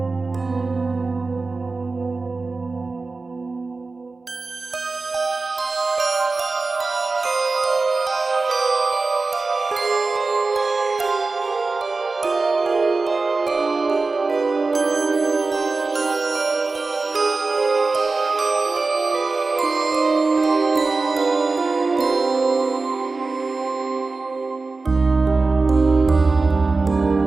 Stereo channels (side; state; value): left; quieter; 3.8 dB